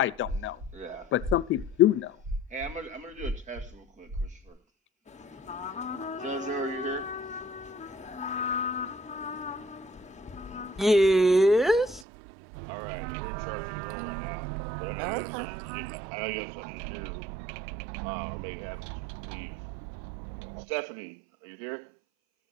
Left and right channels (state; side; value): drops out; left; at 12.1 s